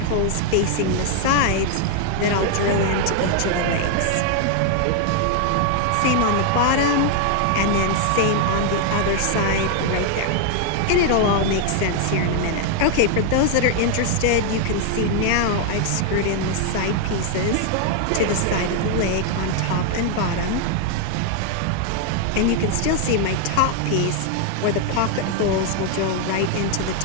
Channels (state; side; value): different; both; correlation 0.00